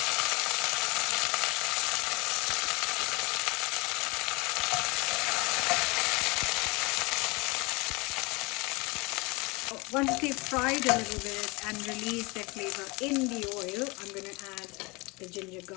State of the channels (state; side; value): quieter; right; 26.1 dB